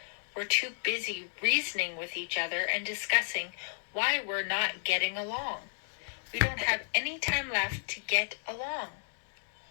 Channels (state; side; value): silent; right; digital silence